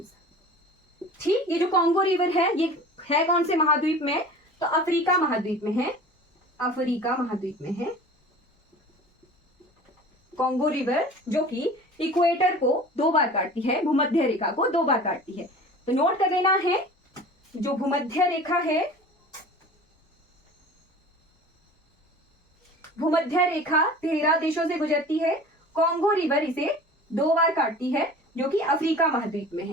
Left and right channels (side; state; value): both; normal; correlation 0.41